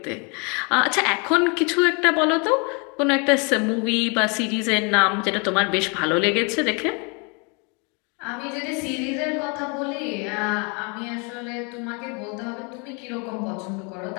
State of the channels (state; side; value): quieter; right; 33.3 dB